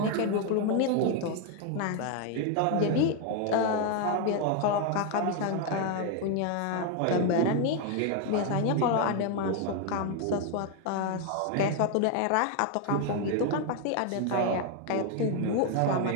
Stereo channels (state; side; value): different; both; correlation 0.01